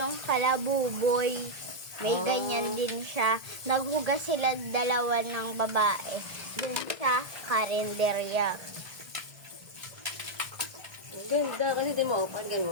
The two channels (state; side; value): late; left; 1.7 ms